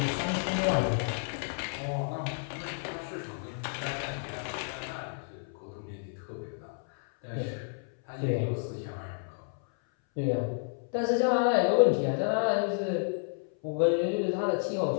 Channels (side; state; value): right; silent; 57 dB below the other